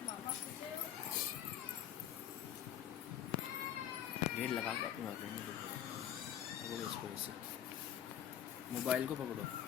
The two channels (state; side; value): quieter; right; 10.4 dB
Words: गेट लगा के अपनी बात करनी पकड़ो इसको ऐसे, मोबाइल को पकड़ो,